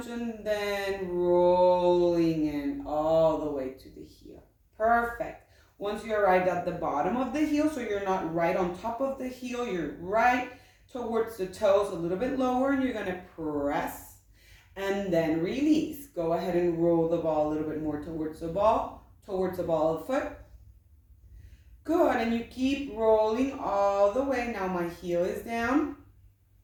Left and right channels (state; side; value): identical; both; correlation 1.00